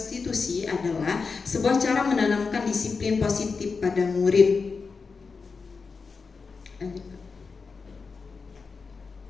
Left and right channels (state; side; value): quieter; right; 4.8 dB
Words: adalah sebuah cara menanamkan disiplin positif pada murid.